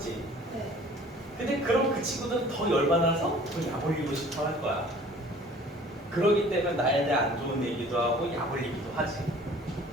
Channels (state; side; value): normal; both; correlation 0.50